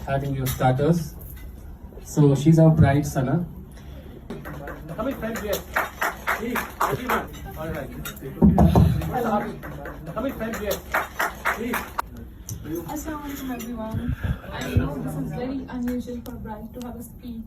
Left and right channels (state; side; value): identical; both; correlation 1.00